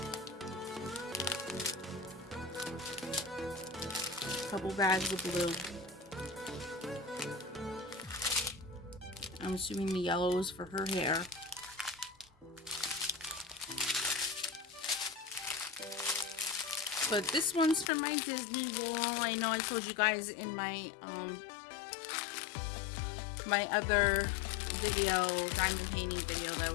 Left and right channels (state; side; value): drops out; right; at 17.9 s